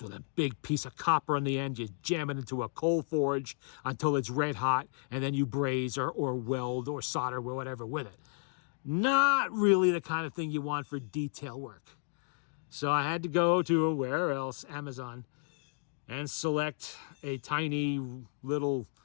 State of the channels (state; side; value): silent; right; 56 dB below the other